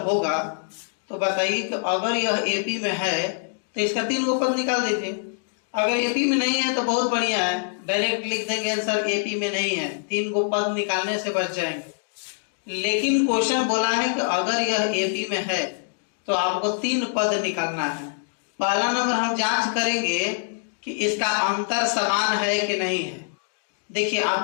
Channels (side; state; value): right; silent; digital silence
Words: होगा तो बताइए कि अगर यह एपी में है तो इसका 3 गो पद निकाल दीजिए। अगर एपी में नहीं है तो बहुत बढ़िया है, डायरेक्ट लिख देंगे आंसर एपी में नहीं है, 3 गो पद निकालने से बच जाएंगे। लेकिन क्वेश्चन बोला है कि अगर यह एपी में है तो आपको 3 पद निकालना है। पहला नंबर हम जांच करेंगे कि इसका अंतर समान है कि नहीं है। देखिए,